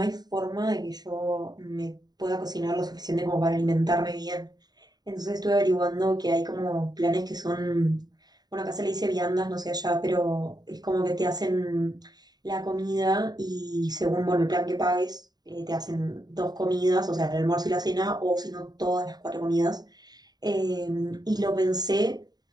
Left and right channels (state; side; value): late; left; 0.20 ms